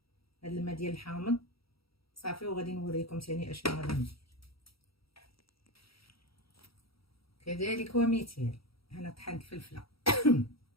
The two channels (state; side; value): late; right; 0.75 ms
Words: هاد الماء ديال الحامض صافي. وغادي نوريكم ثاني اشنو غادي ندير. كذلك ومثال انا طحنت فلفله